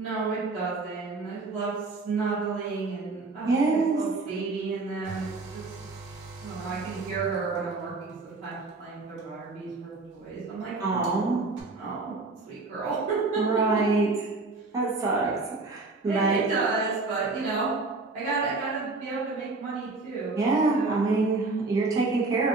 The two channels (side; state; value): left; quieter; 3.6 dB